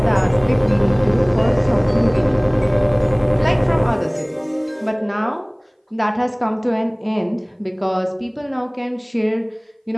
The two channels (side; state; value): both; identical; correlation 1.00